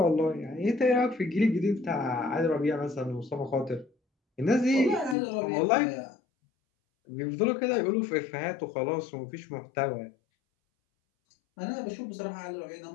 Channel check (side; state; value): right; drops out; at 5.2 s